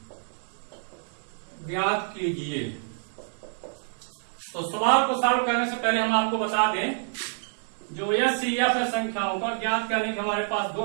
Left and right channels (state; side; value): silent; left; 60 dB below the other